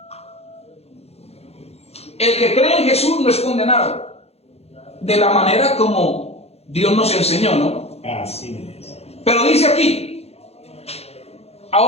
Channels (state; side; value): late; right; 0.30 ms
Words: el que cree en Jesús no es condenado. De la manera como Dios nos enseñó, ¿no? Así es. Pero dice aquí,